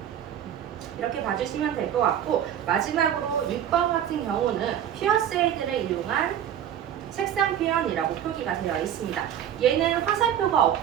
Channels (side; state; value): left; quieter; 10.0 dB